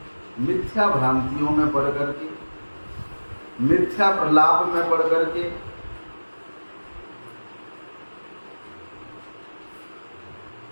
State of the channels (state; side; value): inverted; both; correlation -1.00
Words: मिथ्या भ्रांतियों में पड़ करके, मिथ्या प्रलाप में पड़ करके